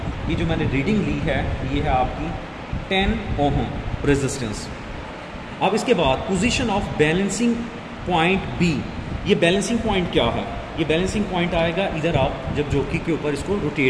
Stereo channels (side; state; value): both; identical; correlation 1.00